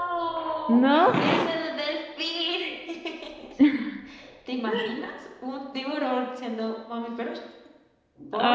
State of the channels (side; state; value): both; identical; correlation 1.00